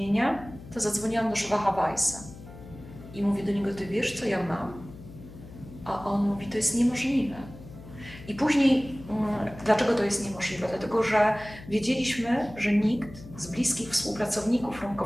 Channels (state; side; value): noise; left; hum, 16 dB below the sound